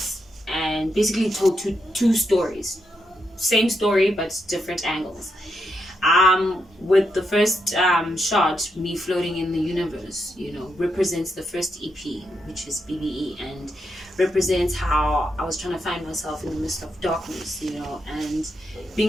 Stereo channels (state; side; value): normal; both; correlation 0.82